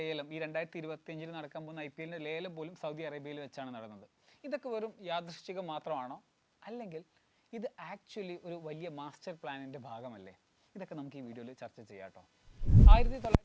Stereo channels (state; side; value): identical; both; correlation 1.00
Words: ഈ 2025 നടക്കാൻ പോകുന്ന IPL ലേലം പോലും സൗദി അറേബ്യയിൽ വെച്ചാണ് നടന്നത്. ഇതൊക്കെ വെറും യാദൃശ്ചികം മാത്രമാണോ, അല്ലെങ്കിൽ ഇത് ആക്ച്വലി ഒരു വലിയ മാസ്റ്റർ പ്ലാനിൻ്റെ ഭാഗമല്ലേ? ഇതൊക്കെ നമുക്ക് ഈ വീഡിയോയിൽ ചർച്ച ചെയ്യാം കേട്ടോ.